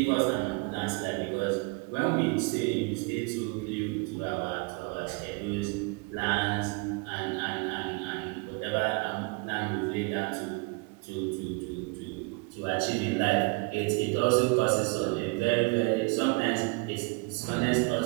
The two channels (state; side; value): quieter; left; 29.5 dB